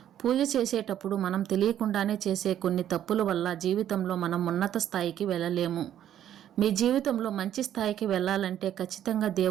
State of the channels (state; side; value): quieter; left; 10.9 dB